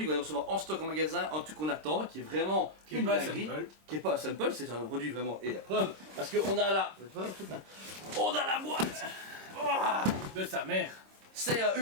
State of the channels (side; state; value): left; late; 26 ms